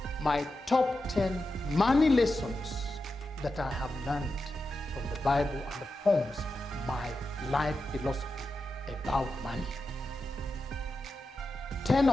my top 10 money lessons that I have learned from the Bible, and it forms my life philosophy about money. 10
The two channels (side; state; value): both; normal; correlation 0.90